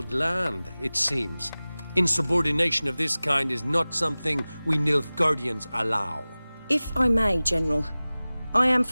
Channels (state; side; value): inverted; both; correlation -0.98